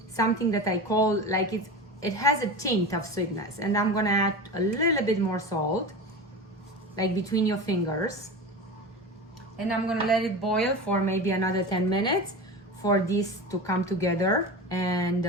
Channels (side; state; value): both; normal; correlation 0.28